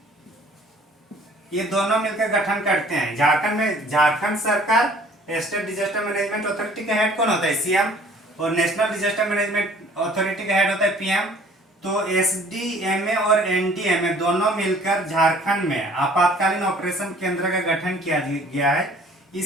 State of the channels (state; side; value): normal; both; correlation 0.54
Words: ये दोनों मिलकर गठन करते हैं। झारखंड में झारखंड सरकार स्टेट डिजास्टर मैनेजमेंट अथॉरिटी का हेड कौन होता है? सीएम। और नेशनल डिजास्टर मैनेजमेंट अथॉरिटी का हेड होता है पीएम। तो एसडीएमए और एनडीएमए दोनों मिलकर झारखंड में आपातकालीन ऑपरेशन केंद्र का गठन किया गया है।